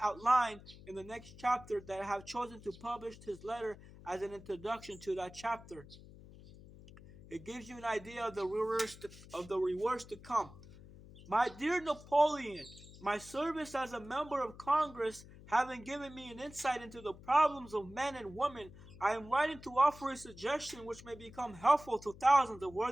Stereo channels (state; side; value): noise; left; hum, 18 dB below the sound